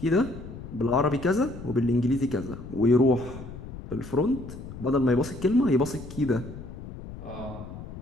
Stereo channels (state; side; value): noise; left; rumble, 12 dB below the sound